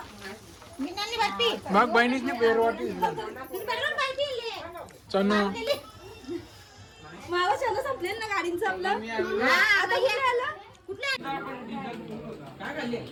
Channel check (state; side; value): identical; both; correlation 1.00